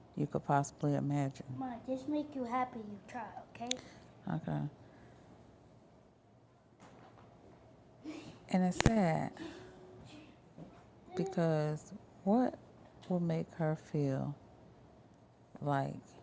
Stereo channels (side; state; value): both; identical; correlation 1.00